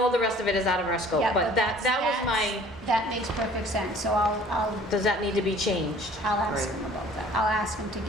all the rest of it is out of our scope, Yeah, but that was my, that makes perfect sense, so I'll does that need to be changed? ask Right. him about that. I'll ask him to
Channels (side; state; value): both; normal; correlation 0.51